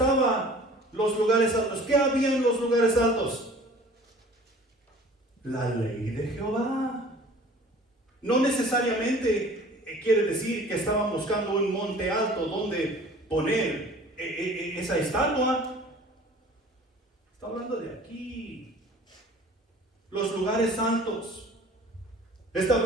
los lugares altos? ¿Qué había en los lugares altos? La ley de Jehová. No necesariamente quiere decir que estaban buscando un monte alto donde poner esa estatua. Está hablando de aquí, los lugares santos. Está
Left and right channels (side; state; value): both; normal; correlation 0.48